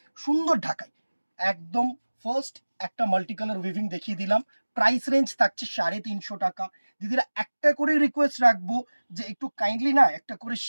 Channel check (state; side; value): inverted; both; correlation -1.00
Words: সুন্দর ঢাকায় একদম। ফার্স্ট একটা মাল্টি কালার উইভিং দেখিয়ে দিলাম, প্রাইস রেঞ্জ থাকছে 350 টাকা। দিদিরা একটা করে রিকোয়েস্ট রাখবো যে একটু কাইন্ডলি না একটা করে